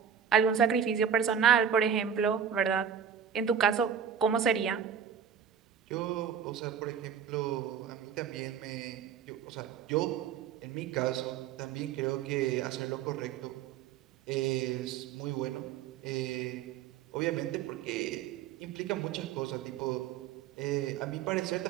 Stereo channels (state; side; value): quieter; left; 8.0 dB